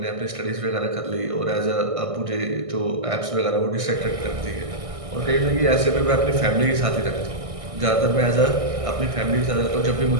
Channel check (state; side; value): late; left; 1.6 ms